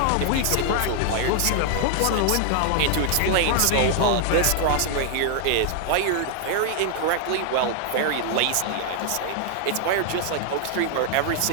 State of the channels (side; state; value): both; different; correlation 0.00